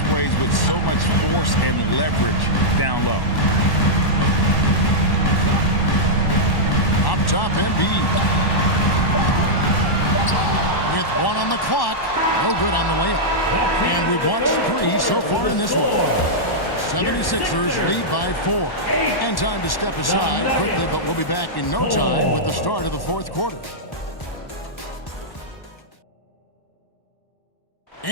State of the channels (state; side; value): late; right; 1.1 ms